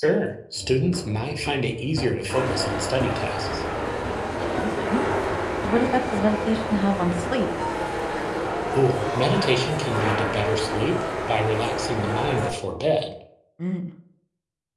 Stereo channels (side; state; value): both; identical; correlation 1.00